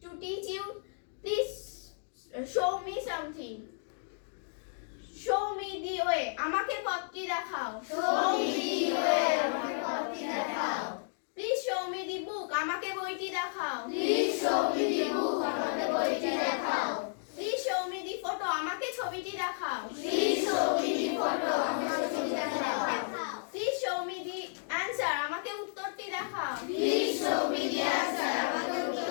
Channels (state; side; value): silent; right; digital silence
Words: to teach you. Please show me something. Show me the way. আমাকে পথটি দেখাও. Show me the way. আমাকে পথটি দেখাও. Please show me the book. আমাকে বইটি দেখাও. Please show me the book. আমাকে বইটি দেখাও. Please show me the photo. আমাকে ছবিটি দেখাও. Please show me the photo. আমাকে ছবিটি দেখাও. Please show me the answer. আমাকে উত্তরটি দেখাও. Please show me the answer. আমাকে